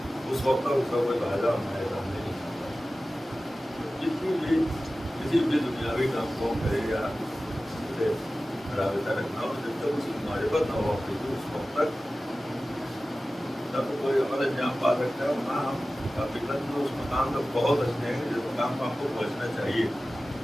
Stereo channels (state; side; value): normal; both; correlation 0.96